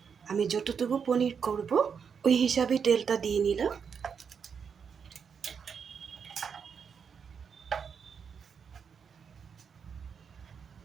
আমি যতটুকু পনির করব ওই হিসাবে তেলটা দিয়ে নিলাম।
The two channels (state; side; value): quieter; left; 6.6 dB